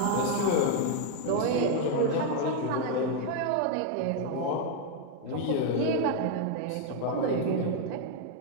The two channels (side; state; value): both; different; correlation 0.00